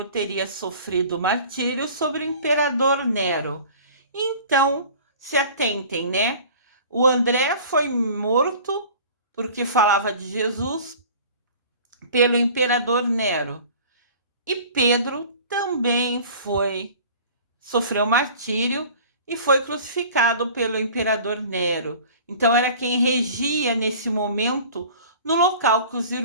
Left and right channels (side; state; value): both; inverted; correlation -0.44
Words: teria sofrido martírio sobre o imperador Nero. Então, se atentem, né? O André foi morto porque falava de Jesus pelo imperador Nero. E Pedro também sofreu martírio e foi crucificado pelo imperador Nero. Então era quem regia nesse momento no local que os